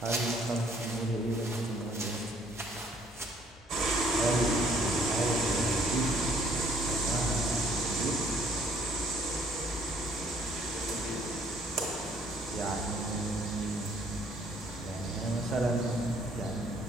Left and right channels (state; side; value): normal; both; correlation 0.61